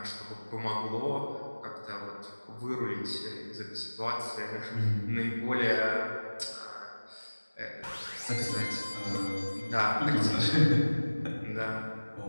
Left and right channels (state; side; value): inverted; both; correlation -1.00